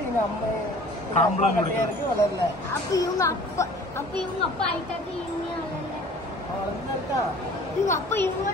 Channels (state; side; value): normal; both; correlation 0.48